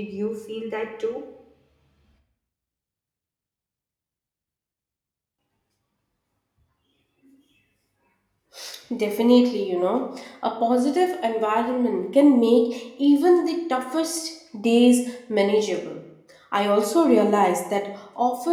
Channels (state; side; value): identical; both; correlation 1.00